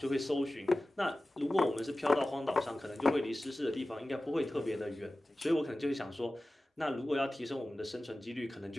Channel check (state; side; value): normal; both; correlation 0.96